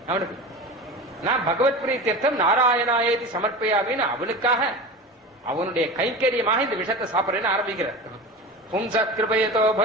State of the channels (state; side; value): normal; both; correlation 0.31